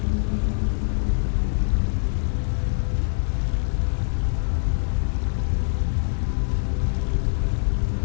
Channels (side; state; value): right; silent; 63 dB below the other